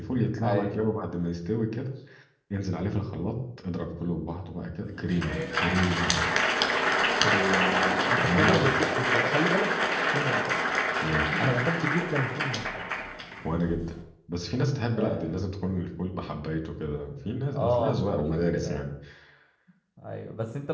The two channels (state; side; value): identical; both; correlation 1.00